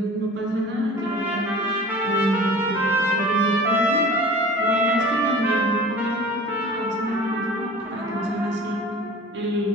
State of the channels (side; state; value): both; normal; correlation 0.41